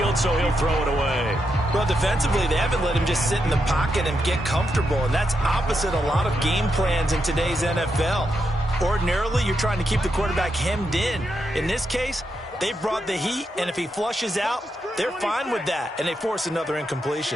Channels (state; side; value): normal; both; correlation 0.83